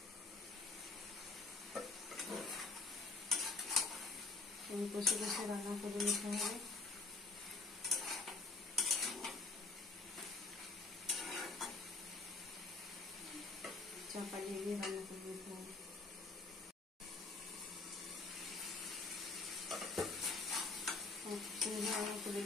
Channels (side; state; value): right; quieter; 3.7 dB